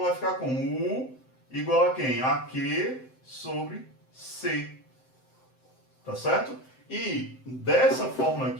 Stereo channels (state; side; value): late; right; 7.7 ms